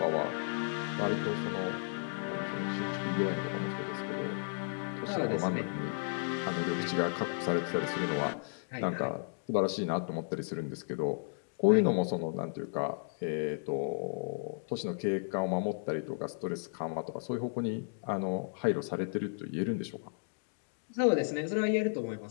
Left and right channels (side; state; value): right; silent; digital silence